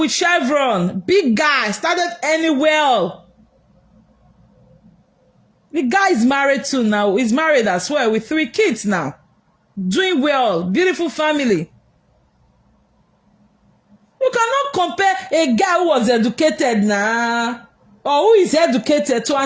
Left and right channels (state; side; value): identical; both; correlation 1.00